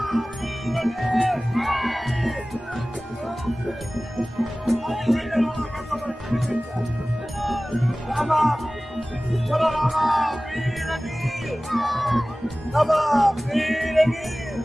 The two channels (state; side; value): normal; both; correlation 0.97